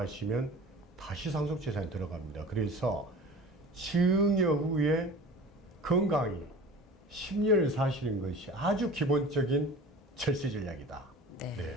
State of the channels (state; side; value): normal; both; correlation 0.39